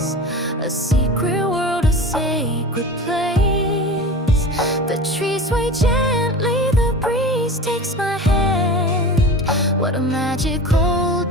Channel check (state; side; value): normal; both; correlation 0.34